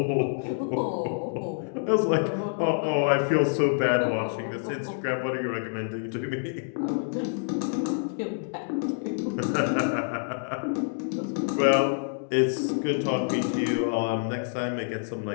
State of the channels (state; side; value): silent; right; digital silence